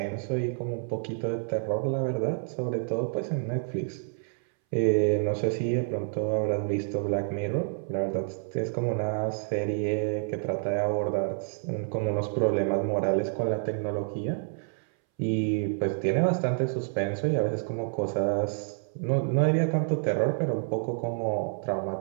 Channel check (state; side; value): silent; left; 59 dB below the other